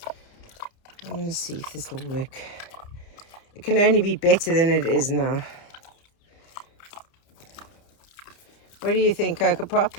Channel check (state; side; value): late; right; 29 ms